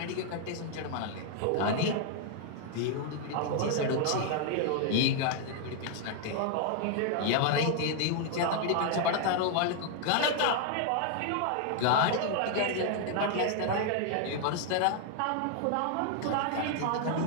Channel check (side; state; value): both; different; correlation 0.00